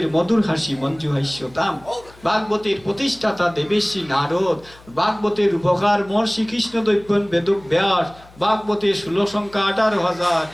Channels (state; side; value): noise; left; hum, 24 dB below the sound